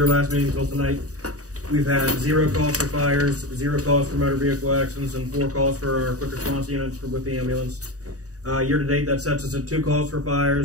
last meeting till tonight, we've had 0 calls for fires, 0 calls for motor vehicle accidents, and 4 calls for our quick response units with the ambulance. Year to date, that sets us at 2 calls for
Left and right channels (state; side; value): late; left; 0.66 ms